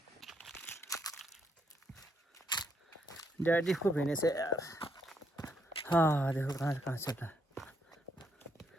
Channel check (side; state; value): both; normal; correlation 0.75